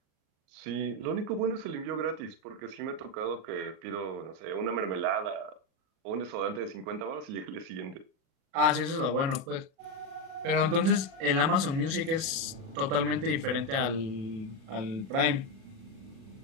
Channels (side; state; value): left; late; 37 ms